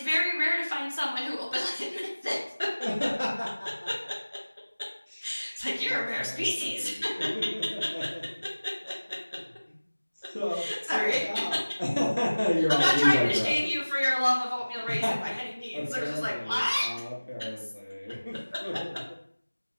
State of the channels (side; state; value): both; inverted; correlation -1.00